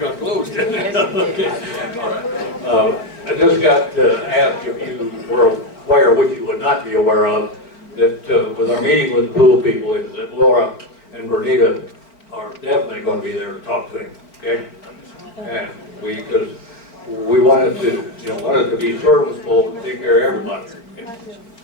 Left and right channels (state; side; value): late; right; 4.3 ms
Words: closed, didn't I? Okay, all right. I just got asked if you were aware, which you would not be aware of, that with our meeting with the pool people, is that Laura and Bernita are definitely going to be there to talk to him, okay? And because we wanted to, wanted to be serviceable and take care of everybody,